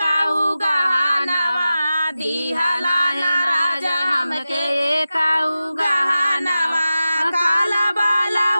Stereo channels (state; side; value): inverted; both; correlation -0.94